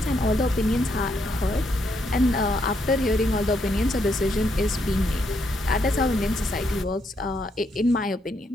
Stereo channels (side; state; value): both; normal; correlation 0.76